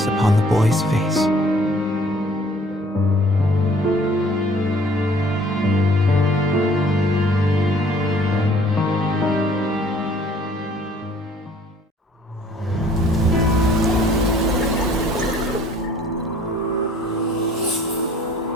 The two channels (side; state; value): both; normal; correlation 0.56